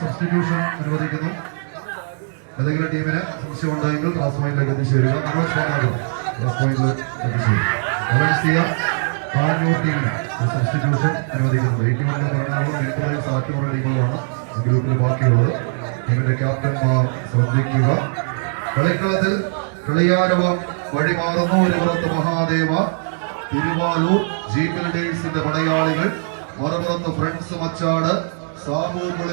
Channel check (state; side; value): silent; left; digital silence